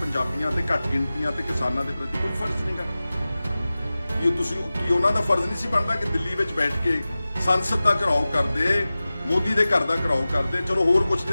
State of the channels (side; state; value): both; inverted; correlation -0.96